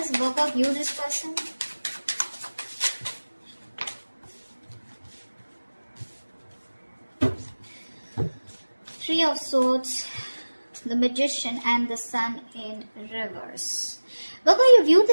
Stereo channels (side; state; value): both; inverted; correlation -1.00